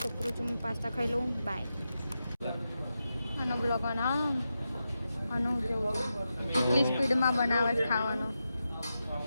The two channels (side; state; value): both; inverted; correlation -0.89